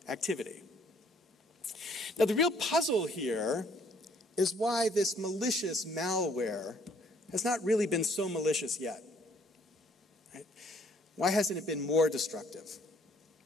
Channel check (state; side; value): normal; both; correlation 0.63